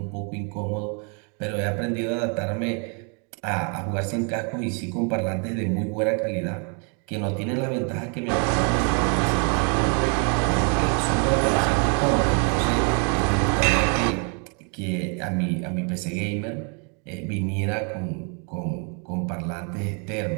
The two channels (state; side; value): quieter; left; 38.7 dB